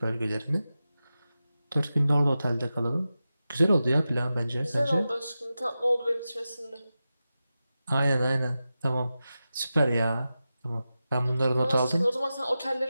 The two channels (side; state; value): both; inverted; correlation -0.93